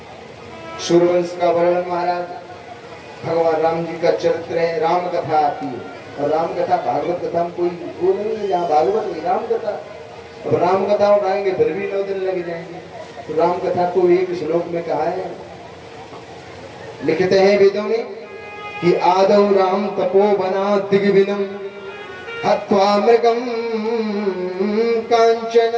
सूर्यवंश का वर्णन, महाराज भगवान राम जी का चरित्र है, राम कथा आती है। और राम कथा भागवत कथा में कोई वो नहीं है, जहाँ भागवत में राम कथा। अब राम कथा उठाएंगे फिर भी 9 दिन लग जाएंगे। तो राम कथा को एक श्लोक में कहा है, लिखते हैं वेदों में कि आदौ राम तपोवना दिग्विनम हत्वा मृगम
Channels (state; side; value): identical; both; correlation 1.00